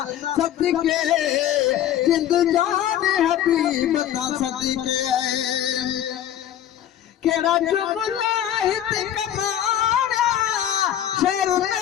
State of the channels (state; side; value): quieter; right; 11.1 dB